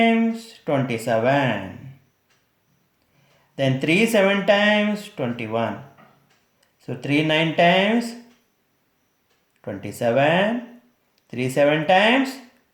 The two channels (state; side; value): identical; both; correlation 1.00